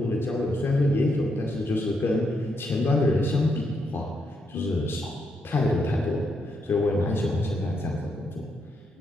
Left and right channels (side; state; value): both; normal; correlation 0.79